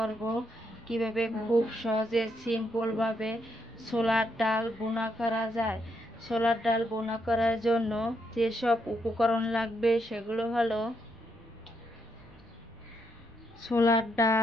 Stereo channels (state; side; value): normal; both; correlation 0.77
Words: কিভাবে খুব সহজে সিম্পলভাবে ছোলার ডাল ভুনা করা যায়। ছোলার ডাল ভুনা করার জন্য যেসব উপকরণ লাগবে সেগুলো হলো ছোলার